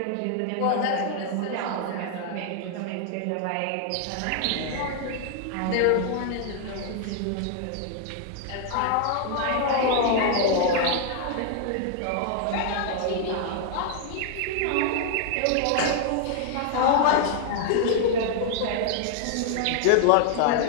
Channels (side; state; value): both; different; correlation 0.00